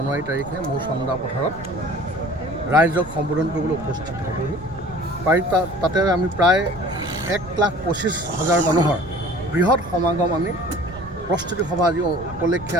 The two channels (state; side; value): noise; right; rumble, 17 dB below the sound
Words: তাৰিখে মোৰ চন্দা পথাৰত ৰাইজক সম্বোধন কৰিবলৈ উপস্থিত হ'বহি। তাতে আমি প্ৰায় 1,25,000 মানুহৰ বৃহৎ সমাগম আমি প্ৰস্তুতি সভা আজি উপলক্ষে